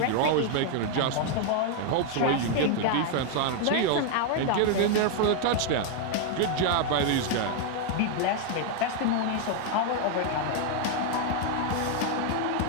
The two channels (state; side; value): different; both; correlation 0.00